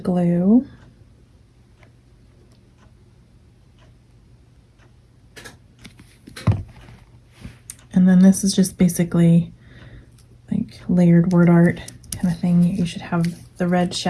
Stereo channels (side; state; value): both; identical; correlation 1.00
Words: and then this is just basically like layered word art kind of thing. You should have the red